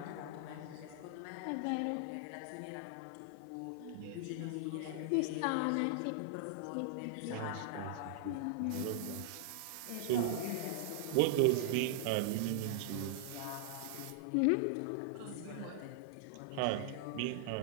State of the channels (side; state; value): both; different; correlation -0.01